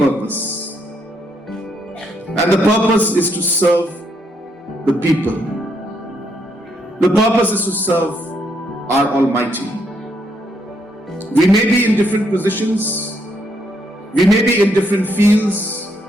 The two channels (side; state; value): both; normal; correlation 0.75